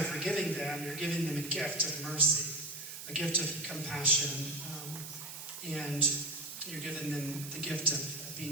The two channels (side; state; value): right; noise; hiss, 10 dB below the sound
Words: forgiving them, you're giving them a gift of mercy, a gift of compassion, and you're giving them the gift of